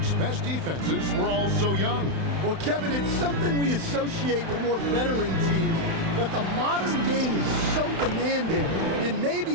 best defenses were all so young? Well, Kevin, it's something we associate with more veteran teams, but the modern game is so demanding, it may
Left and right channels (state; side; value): late; left; 31 ms